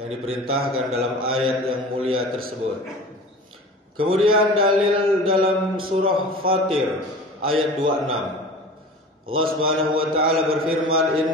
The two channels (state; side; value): normal; both; correlation 0.38